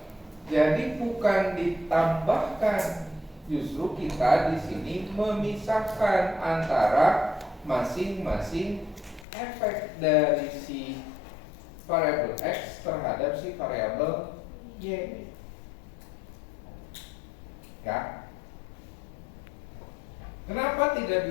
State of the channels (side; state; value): right; drops out; at 9.2 s